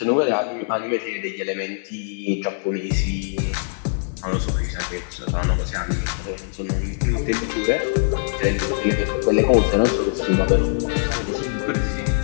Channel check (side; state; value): right; silent; 58 dB below the other